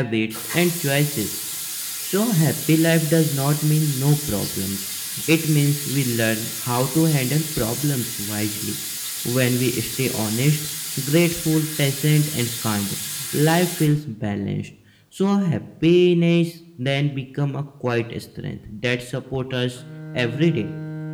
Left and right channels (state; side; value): identical; both; correlation 1.00